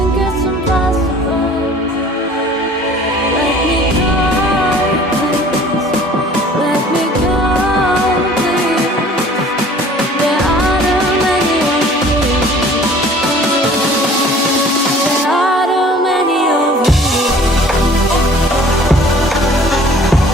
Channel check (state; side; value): normal; both; correlation 0.50